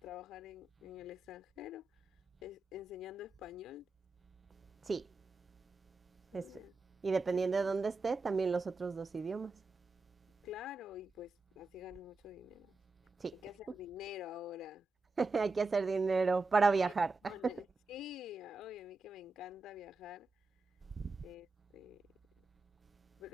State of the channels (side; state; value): left; quieter; 3.3 dB